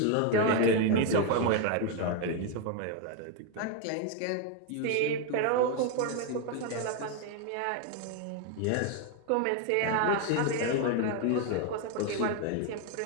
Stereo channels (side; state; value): both; different; correlation 0.02